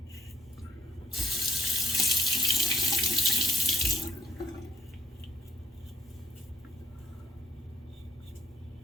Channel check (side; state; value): both; normal; correlation 0.70